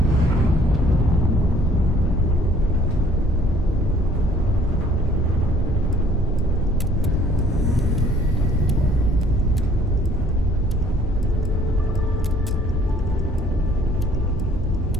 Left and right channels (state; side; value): normal; both; correlation 0.58